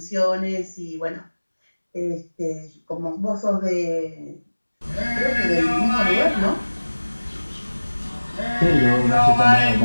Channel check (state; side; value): inverted; both; correlation -1.00